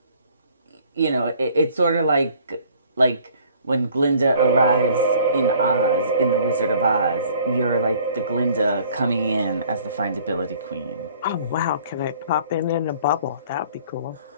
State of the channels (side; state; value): both; inverted; correlation -0.56